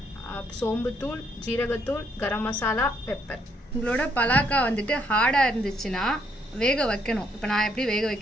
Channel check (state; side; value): normal; both; correlation 0.71